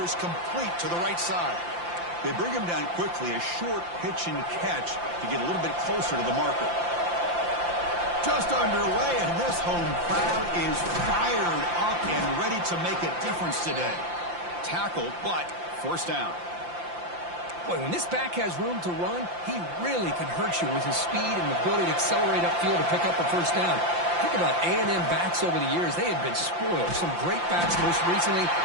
complete to the right side. They bring him down quickly, a short pitch and catch to get a little bit closer to the marker. Just underway, and this home crowd is fired up and ready to make a difference today. Tackled, but first down. Boy, when this back has room to run, he really can hurt you with his speed and the ability to accelerate upfield to pick up a first down. Think about A&M backs over the years. They have been spoiled. Some great backs, most recently,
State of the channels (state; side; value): late; left; 5.8 ms